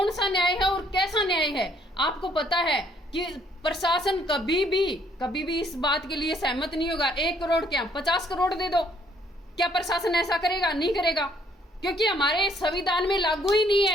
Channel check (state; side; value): normal; both; correlation 0.65